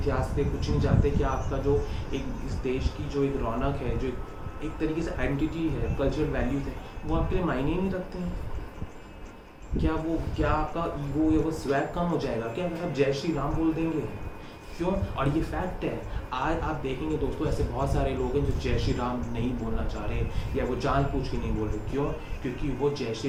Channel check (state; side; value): identical; both; correlation 1.00